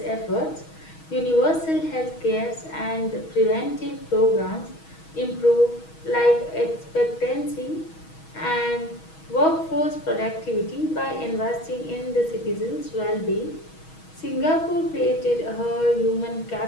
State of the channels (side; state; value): right; late; 6.3 ms